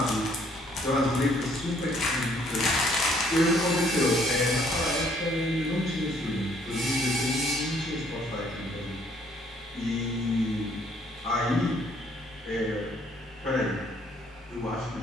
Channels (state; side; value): normal; both; correlation 0.64